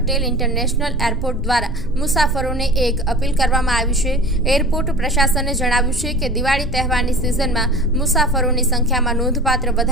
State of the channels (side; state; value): both; normal; correlation 0.37